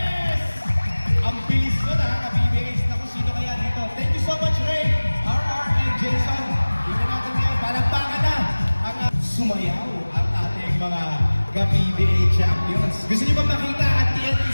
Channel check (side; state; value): both; inverted; correlation -1.00